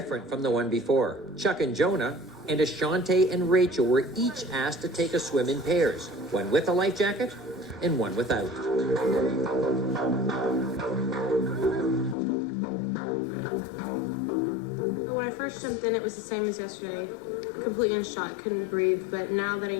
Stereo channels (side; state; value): right; drops out; at 12.2 s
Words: from the one before. Chuck and Jonah and Ashante and Rachel were each asked to take a swim in pairs, one with a life jacket and one without. When I first jumped in, it was the same as yesterday. Completely in shock, couldn't breathe, but now that I